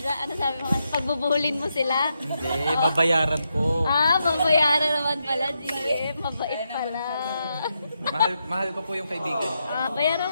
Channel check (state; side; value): inverted; both; correlation -0.83